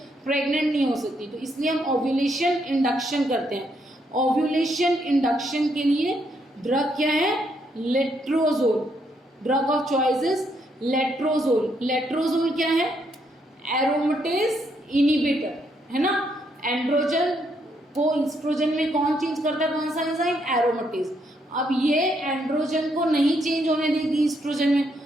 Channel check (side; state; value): both; normal; correlation 0.75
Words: प्रेग्नेंट नहीं हो सकती, तो इसलिए हम ओव्यूलेशन इंडक्शन करते हैं। ओव्यूलेशन इंडक्शन के लिए ड्रग क्या है? Letrozole, drug of choice is letrozole. Letrozole क्या है? एरोमेटेज इनिबिटर, है ना। एंड्रोजन को ईस्ट्रोजन में कौन चेंज करता है, कौन सा एंजाइम, एरोमेटेज। अब ये एंड्रोजन को नहीं चेंज होने देगी ईस्ट्रोजन में,